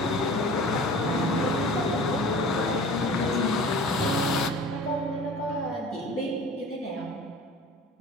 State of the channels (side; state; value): both; normal; correlation 0.41